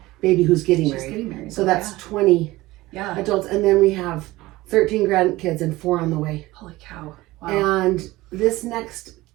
baby who's getting married. So that's 20 adults, and then we have 13 grandkids and 4 on the way. Holy cow! Wow. And this next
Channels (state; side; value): quieter; left; 18.8 dB